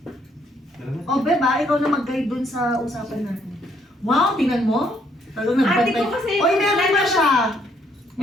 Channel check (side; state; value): both; normal; correlation 0.69